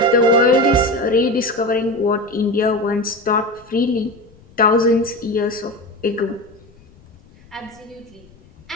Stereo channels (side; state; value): left; noise; rumble, 27 dB below the sound